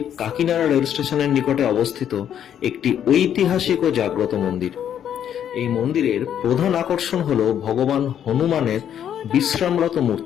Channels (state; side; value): quieter; right; 9.6 dB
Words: কাকিনাড়া রেল স্টেশনের নিকটে অবস্থিত একটি ঐতিহাসিক ও জাগ্রত মন্দির। এই মন্দিরের প্রধান আকর্ষণ হল ভগবান হনুমানের বিশ্রামরত